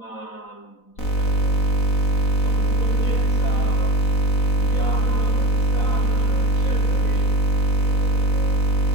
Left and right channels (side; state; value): right; late; 4.0 ms